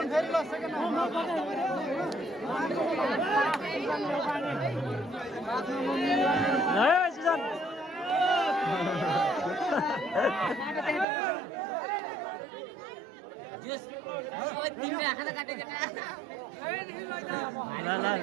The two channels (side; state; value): left; drops out; at 11.1 s